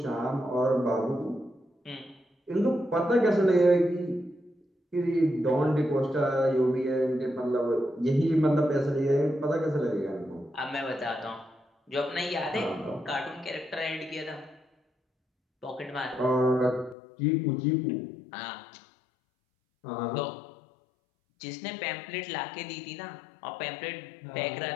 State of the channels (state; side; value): drops out; right; at 16.9 s